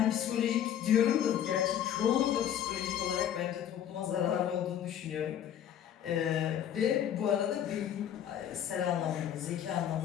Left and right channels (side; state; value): right; quieter; 10.1 dB